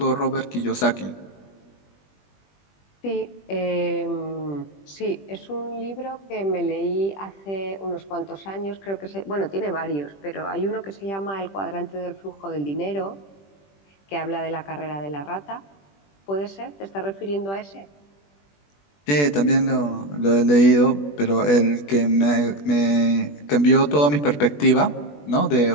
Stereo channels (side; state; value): right; late; 20 ms